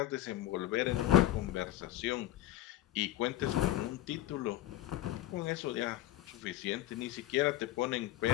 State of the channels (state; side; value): quieter; right; 14.2 dB